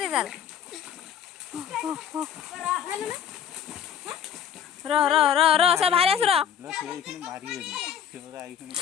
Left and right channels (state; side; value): quieter; right; 8.9 dB